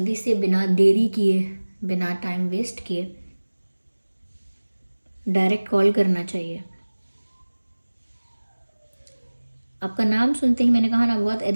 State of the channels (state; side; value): inverted; both; correlation -1.00